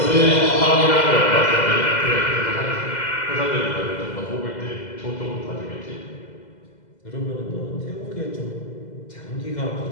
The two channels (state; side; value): late; right; 2.0 ms